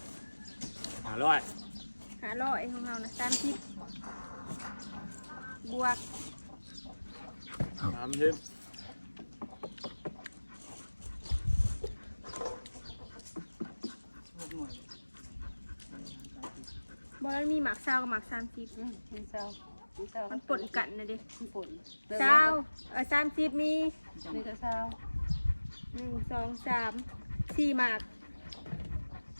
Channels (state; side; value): inverted; both; correlation -1.00